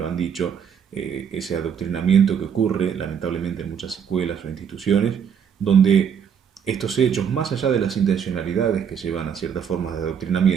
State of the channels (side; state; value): left; quieter; 7.7 dB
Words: han dicho, ese adoctrinamiento que ocurre lamentablemente en muchas escuelas o instituciones, donde estos hechos, más allá de las intencionalidades que llevan a ciertas formas de